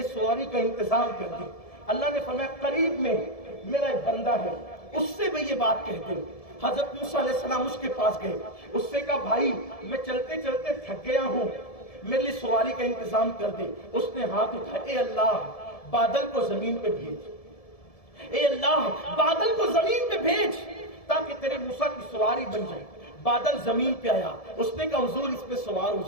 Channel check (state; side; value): late; right; 1.7 ms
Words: سواری کا انتظام کر دے۔ اللہ نے فرمایا قریب میں میرا ایک بندہ ہے، اس سے میں یہ بات کہہ دے۔ حضرت موسیٰ علیہ السلام اس کے پاس گئے، اس سے کہا بھائی میں چلتے چلتے تھک گیا ہوں، میرے لیے سواری کا انتظام کر دے۔ اس نے ہاتھ اٹھایا، اے اللہ بادل کو زمین پہ بھیج، اے اللہ بادل کو زمین پہ بھیج تاکہ تیرے موسیٰ کی سواری بن جائے۔ بادل زمین پہ آیا، اس نے کہا حضور اس پہ سوار ہو